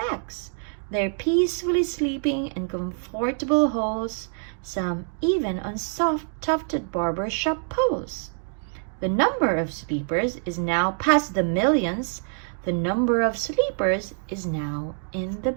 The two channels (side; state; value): left; silent; 61 dB below the other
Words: They're peacefully sleeping in comfortable holes, some even on soft tufted barber shop poles. The number of sleepers is now past the millions. The number of sleepers is now in the